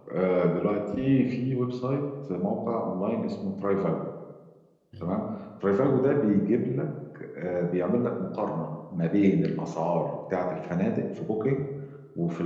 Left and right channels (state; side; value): identical; both; correlation 1.00